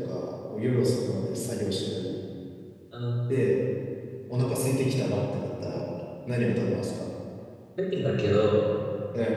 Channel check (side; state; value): both; identical; correlation 1.00